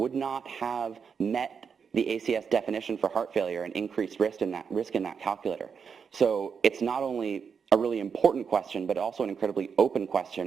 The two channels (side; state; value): left; quieter; 6.4 dB